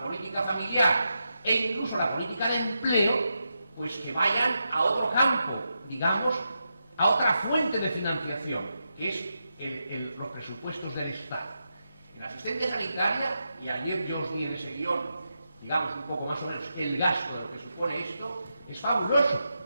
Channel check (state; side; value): inverted; both; correlation -0.86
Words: política familiar e incluso la política de empleo, pues que vayan a otro campo, digamos, a otra fuente de financiación, que es los presupuestos del Estado. En la asistencia sanitaria, y ayer yo os di en ese guión, digamos un poco más o menos, el gasto de lo que supone esto, es fabuloso.